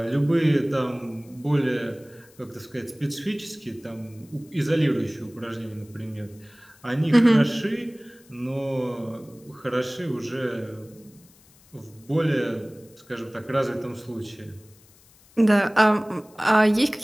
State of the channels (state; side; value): noise; left; hiss, 28 dB below the sound